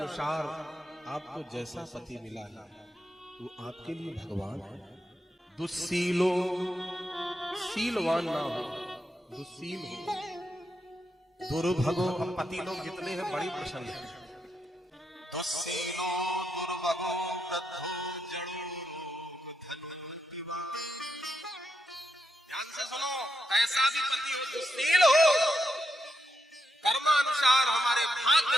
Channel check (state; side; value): normal; both; correlation 0.84